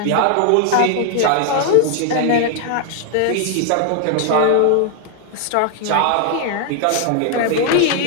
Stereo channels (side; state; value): both; different; correlation 0.00